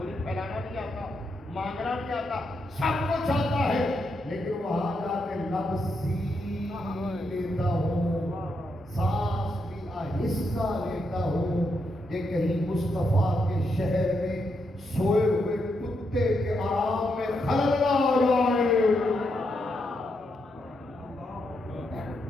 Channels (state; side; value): normal; both; correlation 0.81